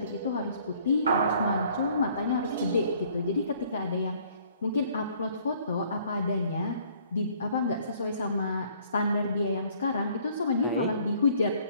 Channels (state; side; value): inverted; both; correlation -0.60